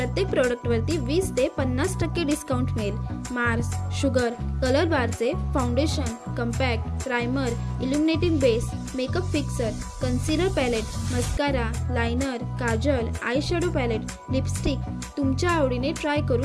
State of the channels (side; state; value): both; identical; correlation 1.00